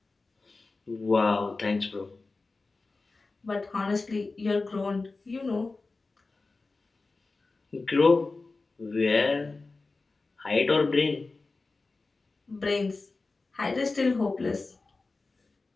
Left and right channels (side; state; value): right; quieter; 3.7 dB